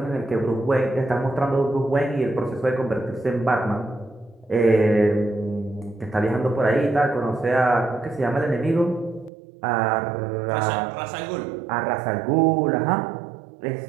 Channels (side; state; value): left; drops out; at 9.3 s